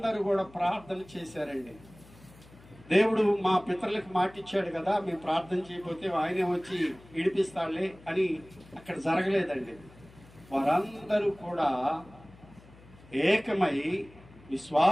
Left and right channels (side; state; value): left; noise; hum, 23 dB below the sound